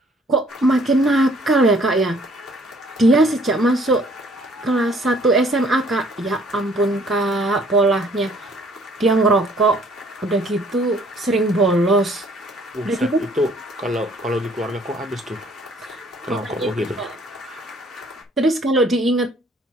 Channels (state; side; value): normal; both; correlation 0.60